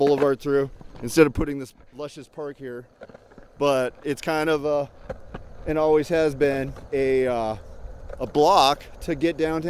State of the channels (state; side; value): identical; both; correlation 1.00